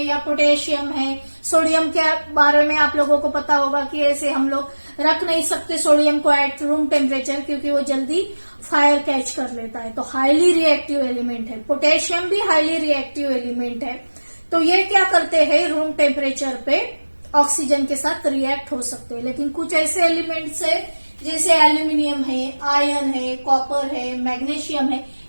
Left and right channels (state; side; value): inverted; both; correlation -1.00